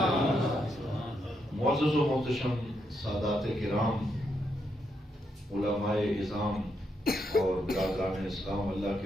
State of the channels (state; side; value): normal; both; correlation 0.80